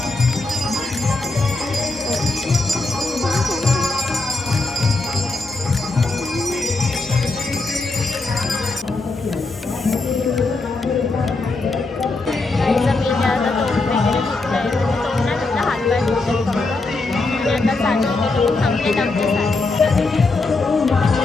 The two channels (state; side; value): quieter; right; 3.4 dB